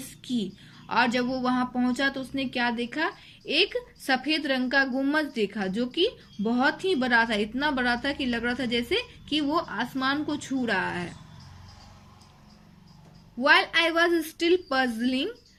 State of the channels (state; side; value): identical; both; correlation 1.00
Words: sky. और जब वो वहां पहुंचा तो उसने क्या देखा? एक सफेद रंग का गुम्बद देखा जो कि बहुत ही बड़ा था, इतना बड़ा था कि लग रहा था जैसे कि वो आसमान को छू रहा है। While I was still puzzling